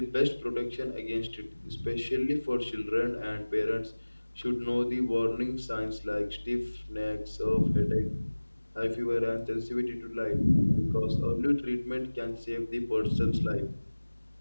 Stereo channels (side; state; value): both; inverted; correlation -1.00